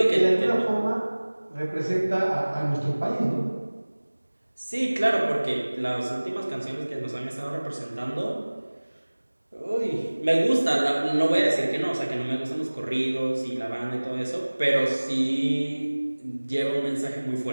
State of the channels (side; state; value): both; inverted; correlation -1.00